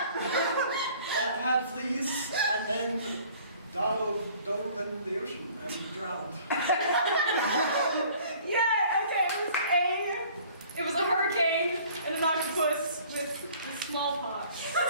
that had fleas and then dove in the ocean and drowned. Yeah, okay, it was a hurricane and an octopus with smallpox.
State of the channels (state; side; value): inverted; both; correlation -0.53